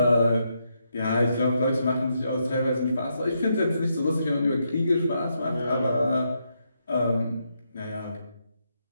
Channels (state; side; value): inverted; both; correlation -0.80